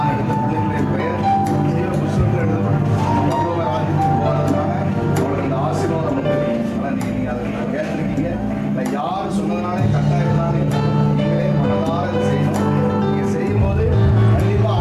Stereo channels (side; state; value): both; identical; correlation 1.00